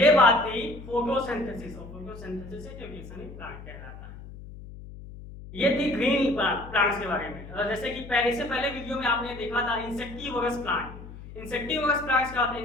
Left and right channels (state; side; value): noise; left; hum, 14 dB below the sound